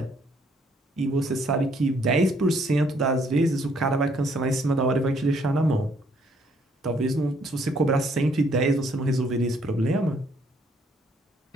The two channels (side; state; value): both; normal; correlation 0.67